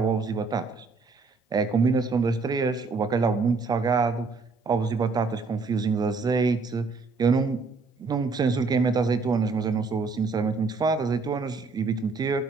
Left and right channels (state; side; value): quieter; left; 4.2 dB